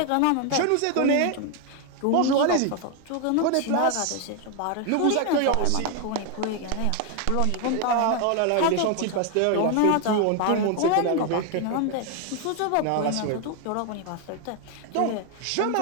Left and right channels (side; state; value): both; different; correlation 0.01